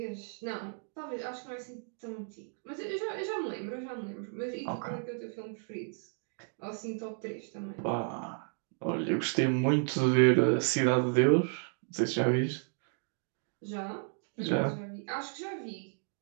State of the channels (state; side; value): silent; left; 56 dB below the other